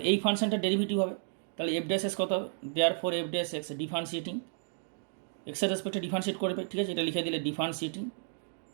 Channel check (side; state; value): left; silent; digital silence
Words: এই ফাংশনটা ডেরিভেটিভ হবে, তাহলে এফ ড্যাশ এক্স কত হবে, therefore f dash x differentiating এক্সের রেসপেক্টে ডিফারেন্সিয়েট করবে, ঠিক আছে, এটা লিখে দিলে differentiating